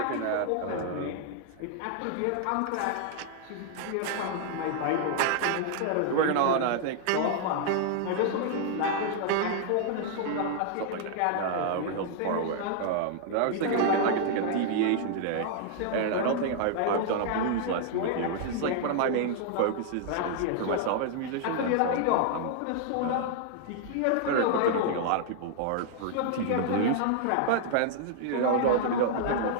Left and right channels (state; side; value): different; both; correlation -0.01